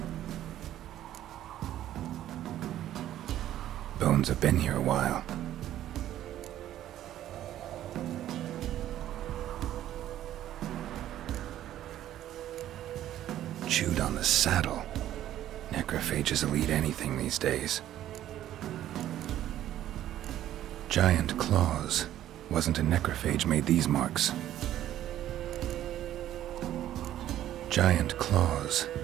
Bones have been here a while. Chewed on the saddle. Necrophages will eat anything these days. Giant claws. Wasn't a necrophage made these marks. Giant claws.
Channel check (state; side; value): quieter; left; 12.5 dB